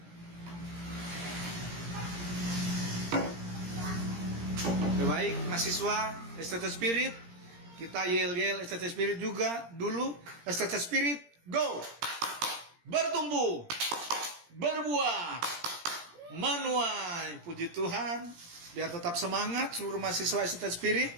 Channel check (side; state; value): left; late; 17 ms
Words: Baik, mahasiswa STT Spirit, kita yel-yel STT Spirit juga dulu. STT Spirit, go! Bertumbuh, berbuah, menuai. Puji Tuhan, biar tetap semangat seluruh mahasiswa STT Spirit.